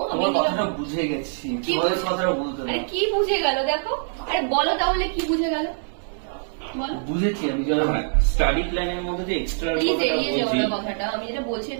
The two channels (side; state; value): left; silent; digital silence